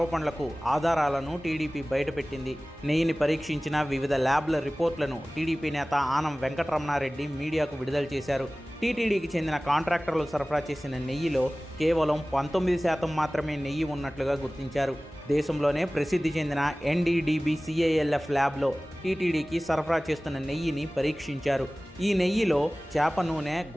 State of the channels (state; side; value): normal; both; correlation 0.98